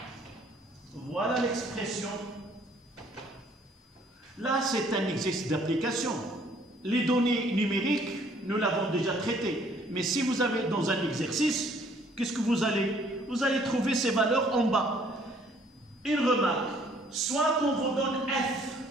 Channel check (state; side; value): normal; both; correlation 0.61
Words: Voilà l'expression. Là, c'est un exercice d'application. Les données numériques, nous l'avons déjà traitées. Mais si vous avez dans un exercice, qu'est-ce que vous allez? Vous allez trouver ces valeurs en bas. Une remarque, soit qu'on vous donne F